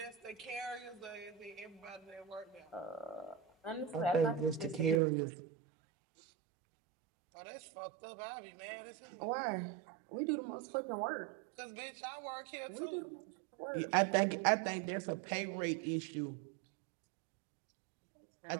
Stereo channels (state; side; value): drops out; left; at 5.0 s